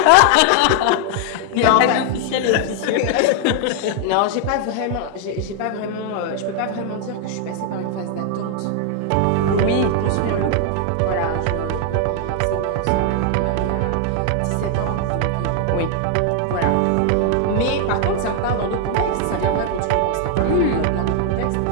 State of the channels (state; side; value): different; both; correlation 0.00